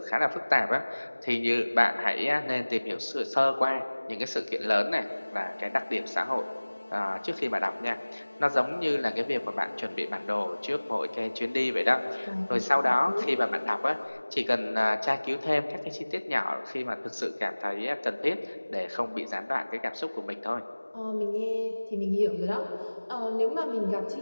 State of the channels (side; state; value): both; inverted; correlation -1.00